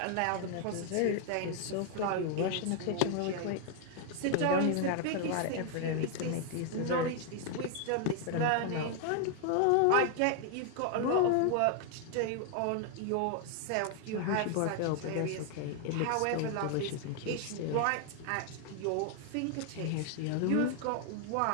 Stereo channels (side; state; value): both; different; correlation 0.00